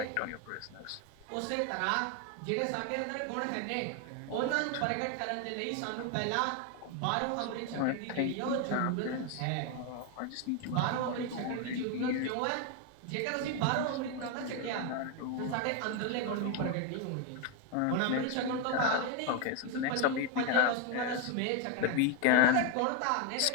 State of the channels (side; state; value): both; different; correlation 0.01